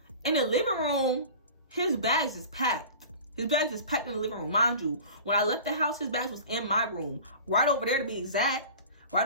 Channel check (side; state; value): both; inverted; correlation -0.38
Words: In the living room, his bags is packed. His bags is packed in the living room. Mind you, when I left the house, his bags was in my room. Right over there to be exact.